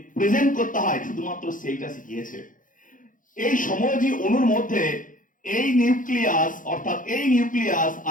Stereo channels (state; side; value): late; right; 0.39 ms